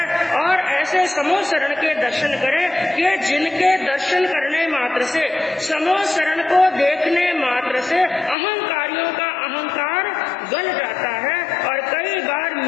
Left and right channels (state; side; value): drops out; right; at 8.3 s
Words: और ऐसे समूह शरण के दर्शन करें कि जिनके दर्शन करने मात्र से, समूह शरण को देखने मात्र से अहंकारियों का अहंकार गल जाता है और कई बार